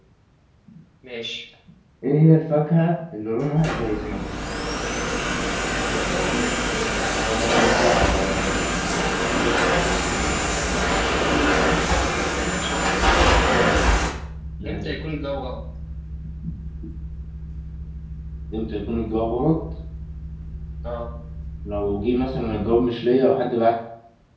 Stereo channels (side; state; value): both; identical; correlation 1.00